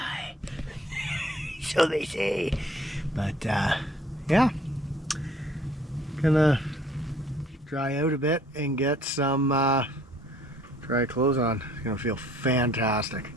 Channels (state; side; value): normal; both; correlation 0.58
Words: So they say. But yeah, gonna dry out a bit and get some dry clothes on. It's gonna feel fantastic.